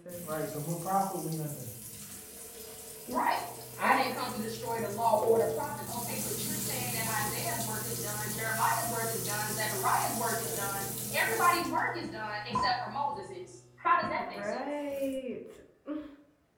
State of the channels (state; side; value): identical; both; correlation 1.00